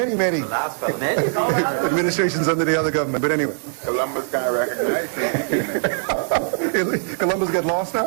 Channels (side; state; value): left; silent; 65 dB below the other